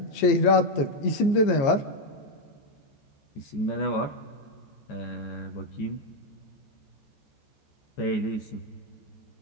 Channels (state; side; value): late; right; 15 ms